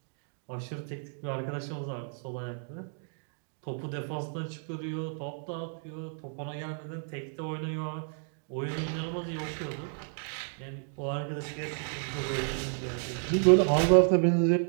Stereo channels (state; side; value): silent; left; 57 dB below the other